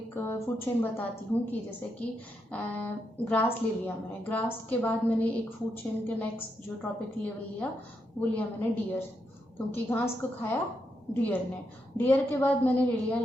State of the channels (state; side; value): normal; both; correlation 0.82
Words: फूड चेन बताती हूँ कि जैसे कि ग्रास ले लिया मैंने, ग्रास के बाद मैंने एक फूड चेन के नेक्स्ट जो ट्रॉपिक लेवल लिया वो लिया मैंने डियर, क्योंकि घास को खाया डियर ने। डियर के बाद मैंने ले लिया